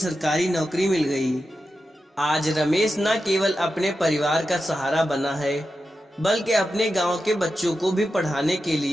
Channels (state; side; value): normal; both; correlation 0.90